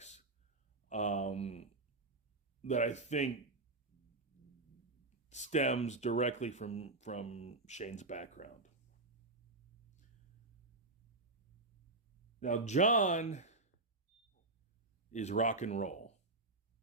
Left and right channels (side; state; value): left; quieter; 3.1 dB